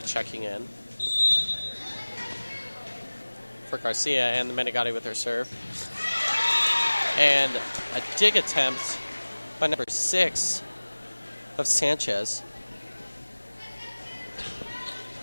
checking in for Garcia, and the Menegatti with her serve. And a dig attempt by number 6 of Sanchez.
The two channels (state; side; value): inverted; both; correlation -1.00